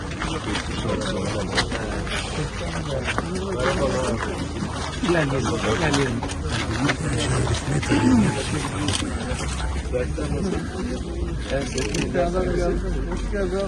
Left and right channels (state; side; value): identical; both; correlation 1.00